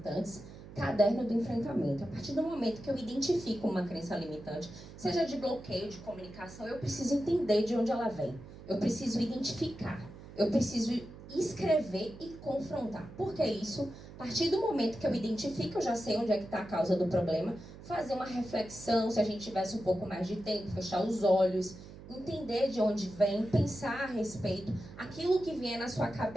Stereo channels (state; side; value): noise; right; hum, 16 dB below the sound